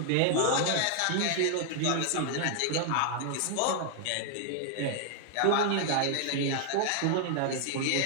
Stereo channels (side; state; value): both; different; correlation 0.00